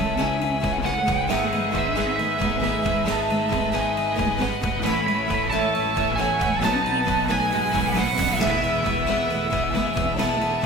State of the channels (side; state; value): both; normal; correlation 0.53